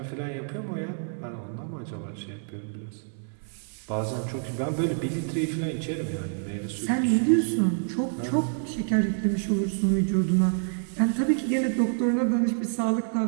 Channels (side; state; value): left; silent; digital silence